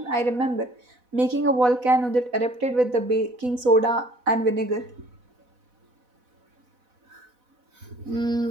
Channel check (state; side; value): late; left; 4.0 ms